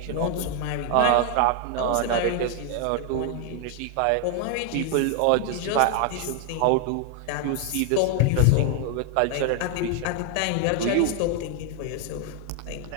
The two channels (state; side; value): different; both; correlation 0.01